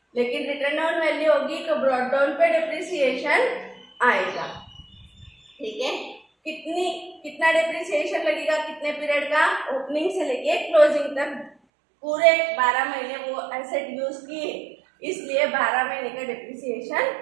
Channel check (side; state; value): left; drops out; at 11.5 s